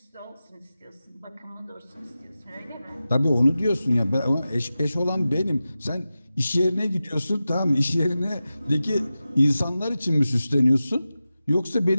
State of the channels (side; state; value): both; inverted; correlation -0.94